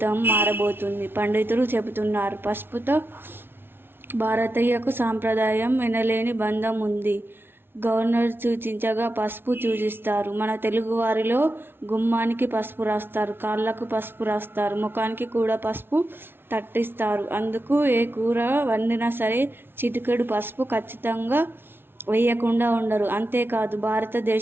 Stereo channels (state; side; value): late; left; 0.11 ms